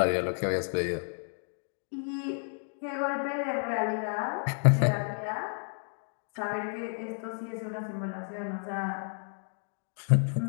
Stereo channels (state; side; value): silent; right; 57 dB below the other